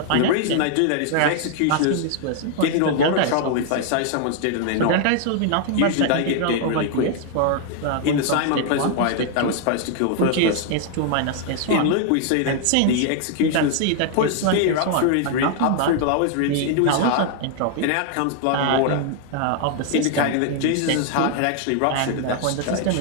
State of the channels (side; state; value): both; different; correlation 0.00